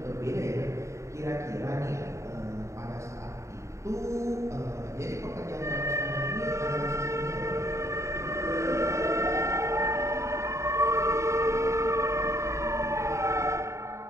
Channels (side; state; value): left; late; 0.14 ms